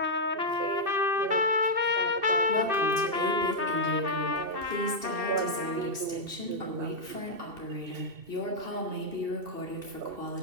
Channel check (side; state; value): left; late; 2.7 ms